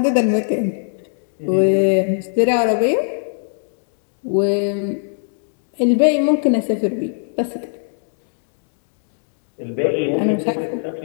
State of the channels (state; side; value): silent; right; 65 dB below the other